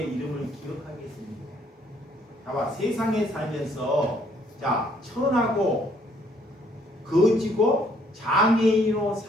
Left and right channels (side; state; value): both; normal; correlation 0.66